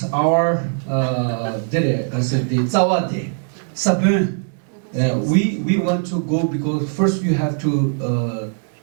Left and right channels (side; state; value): left; silent; digital silence